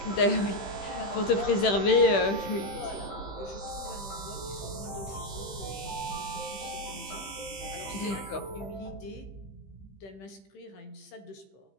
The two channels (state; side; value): late; right; 15 ms